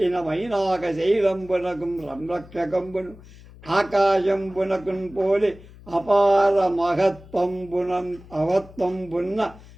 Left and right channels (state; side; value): noise; left; hum, 20 dB below the sound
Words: మైనాక శైలంబునకు సంరక్షకంబును ఆకాశంబునకున్ పోలి అపార అవత్వంబున్న